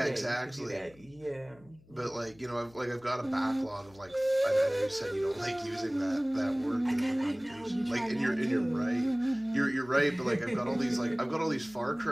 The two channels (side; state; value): left; noise; hum, 26 dB below the sound